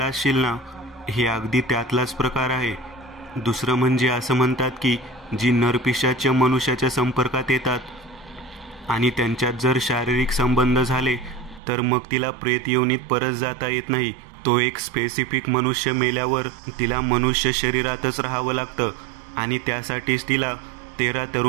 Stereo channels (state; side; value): drops out; left; at 11.6 s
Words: असशील ना, हे अगदी त्यातलाच प्रकार आहे. दुसरं म्हणजे असं म्हणतात की जी नरपिशाच मनुष्याच्या संपर्कात येतात आणि त्यांच्यात जर शारीरिक संबंध झाले तर मग तिला प्रेत योनीत परत जाता येत नाही. तो एक स्पेसिफिक मनुष्य मेल्यावर तिला मनुष्य शरीरातच राहावं लागतं आणि त्यासाठीच तिला 13